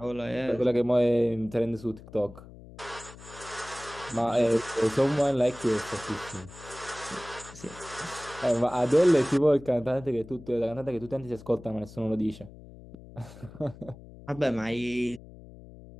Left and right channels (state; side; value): noise; left; hum, 18 dB below the sound